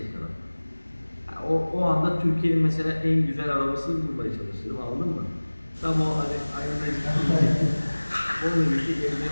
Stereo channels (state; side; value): inverted; both; correlation -1.00